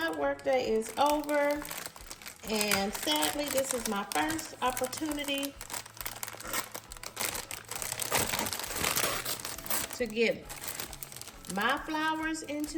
workday is over. And sadly, this is my first opportunity to get my flowers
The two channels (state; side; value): identical; both; correlation 1.00